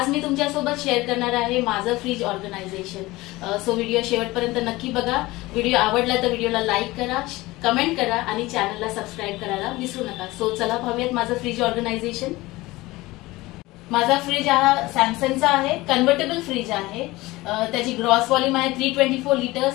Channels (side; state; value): right; quieter; 19.9 dB